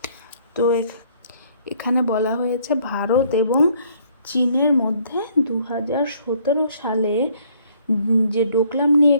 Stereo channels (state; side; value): inverted; both; correlation -0.63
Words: তো এখানে বলা হয়েছে ভারত এবং চীনের মধ্যে 2017 সালে যে ডোকলাম নিয়ে